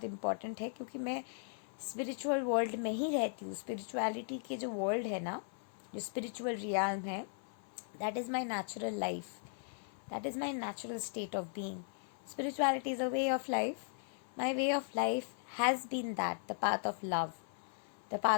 इम्पॉर्टेंट है, क्योंकि मैं स्पिरिचुअल वर्ल्ड में ही रहती हूँ. स्पिरिचुअलिटी के जो वर्ल्ड है ना, जो स्पिरिचुअल रियाल्म है, that is my natural life, that is my natural state of being. Spirituality is a way of life. My way of life has been that, the path of love, the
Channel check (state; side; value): silent; right; 53 dB below the other